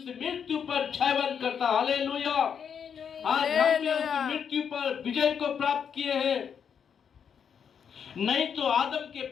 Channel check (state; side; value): quieter; right; 7.4 dB